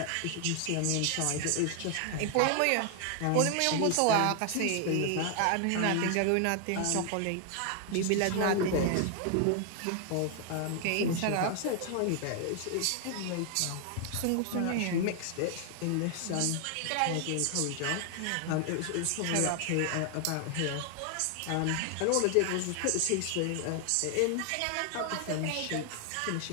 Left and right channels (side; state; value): both; different; correlation 0.00